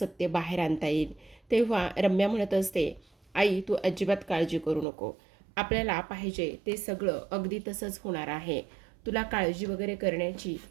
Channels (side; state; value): left; drops out; at 4.9 s